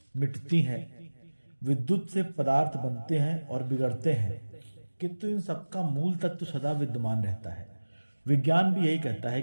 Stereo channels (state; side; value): inverted; both; correlation -1.00